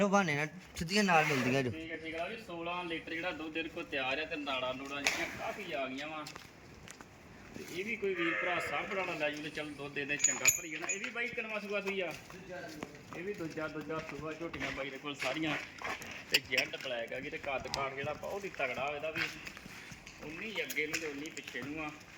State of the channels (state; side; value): identical; both; correlation 1.00